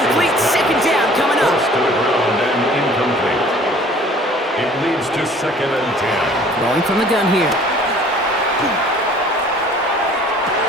Second down coming up. Forced to the ground and incomplete. It leads to second and 10. Rolling from the gun here.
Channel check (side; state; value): both; normal; correlation 0.52